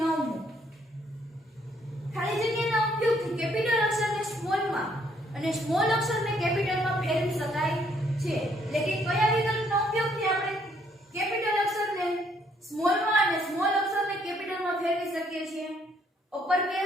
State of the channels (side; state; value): both; normal; correlation 0.68